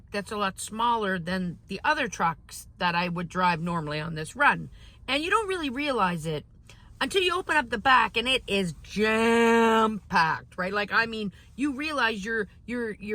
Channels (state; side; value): identical; both; correlation 1.00